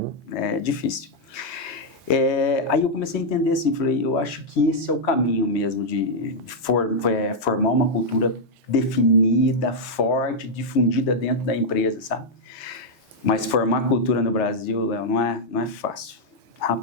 É difícil. Aí eu comecei a entender assim, falei, eu acho que esse é o caminho mesmo de formar uma cultura definida, forte, difundida dentro da empresa, sabe? Mas formar cultura no Brasil, Léo, não é fácil.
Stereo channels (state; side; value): normal; both; correlation -0.03